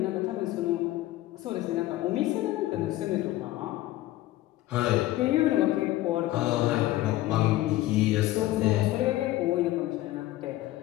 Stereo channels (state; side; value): quieter; right; 16.1 dB